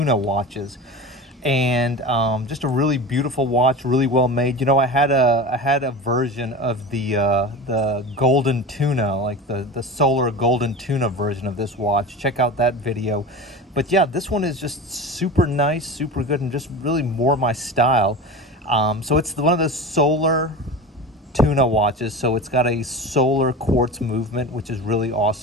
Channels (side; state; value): both; normal; correlation 0.30